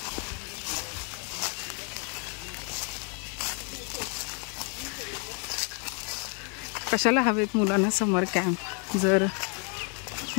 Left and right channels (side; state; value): right; quieter; 38.4 dB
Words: कशाला हवेत मुलांना समर कॅम्प. जर